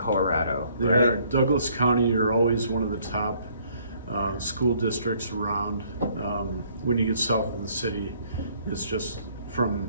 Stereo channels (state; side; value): inverted; both; correlation -0.63